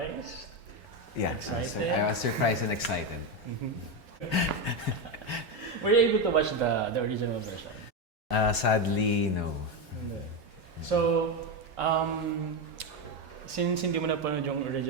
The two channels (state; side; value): normal; both; correlation 0.11